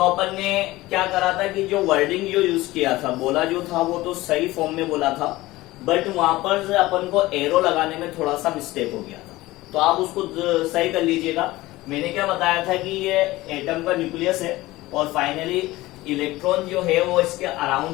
अपन ने क्या करा था कि जो वर्डिंग जो यूज किया था, बोला जो था वो तो सही फॉर्म में बोला था, बट वहां पर अपन को एरो लगाने में थोड़ा सा मिस्टेक हो गया था, तो आप उसको सही कर लीजिएगा। मैंने क्या बताया था कि ये एटम का न्यूक्लियस है और फाइनली इलेक्ट्रॉन जो है वो इसके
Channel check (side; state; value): right; quieter; 18.5 dB